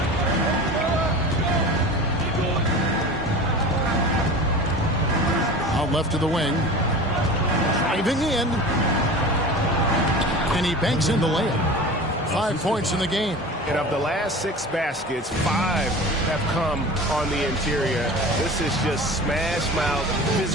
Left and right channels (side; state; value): both; normal; correlation 0.35